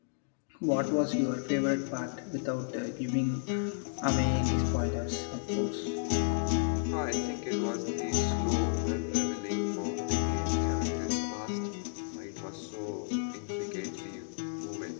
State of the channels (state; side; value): silent; right; digital silence